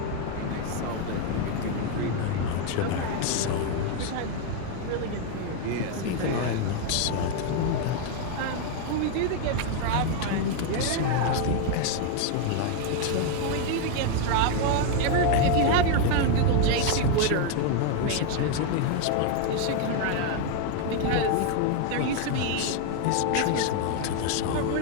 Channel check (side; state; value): both; different; correlation 0.00